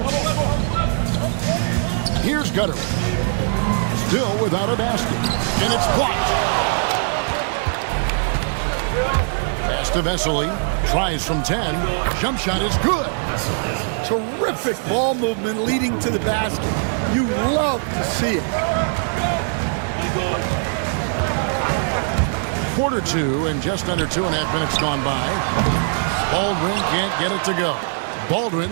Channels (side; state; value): left; silent; 59 dB below the other